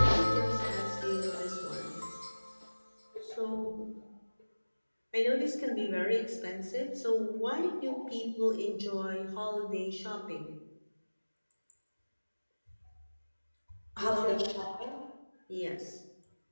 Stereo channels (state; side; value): inverted; both; correlation -1.00